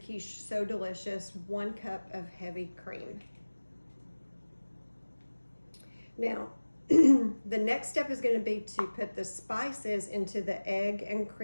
so delicious: 1 cup of heavy cream. Now, the next step is going to be to put the spices into the egg and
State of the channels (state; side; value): inverted; both; correlation -1.00